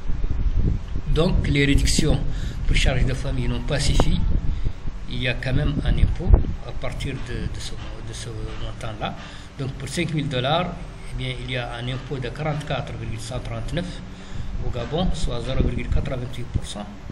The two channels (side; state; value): both; identical; correlation 1.00